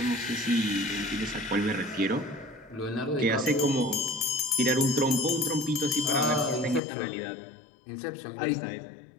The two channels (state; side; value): drops out; right; at 6.8 s